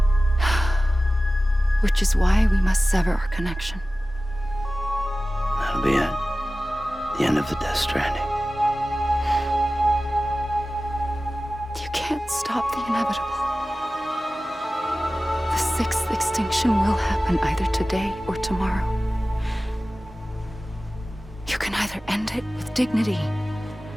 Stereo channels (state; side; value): normal; both; correlation 0.96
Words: Which is why we must sever our connection. That'll be it. The end of the Death Stranding. You can't stop the inevitable. The sixth extinction will happen either today or tomorrow. You can either end it with dignity,